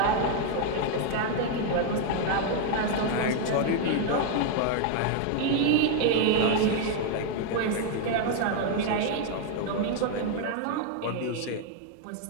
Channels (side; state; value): both; different; correlation 0.00